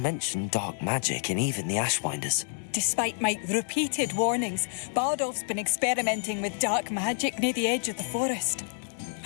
dark magic and even the Ashwinders. Despite my repeated warnings, Bardolph's been experimenting with dark magic near the edge of the forest.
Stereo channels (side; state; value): right; silent; 59 dB below the other